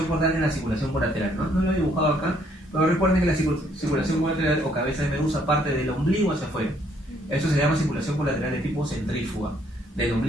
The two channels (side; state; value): both; normal; correlation 0.67